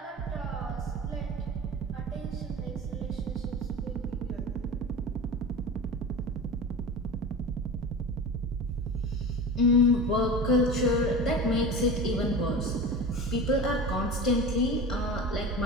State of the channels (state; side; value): normal; both; correlation 0.31